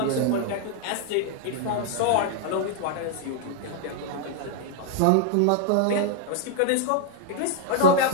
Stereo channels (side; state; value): both; different; correlation 0.00